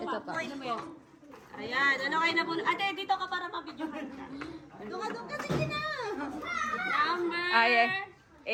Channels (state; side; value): identical; both; correlation 1.00